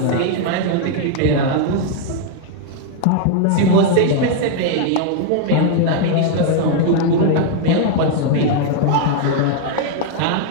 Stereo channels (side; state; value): both; different; correlation 0.00